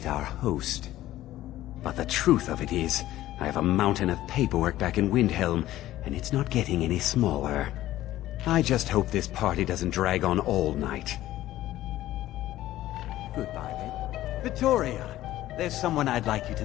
our host. But the truth of it is, I have a mountain of paperwork back in Windhelm, and it's not getting any smaller. I just hope this party doesn't drag on all night. Goodbye, then. Victoria, there's someone I'd like you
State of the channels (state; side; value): quieter; right; 14.6 dB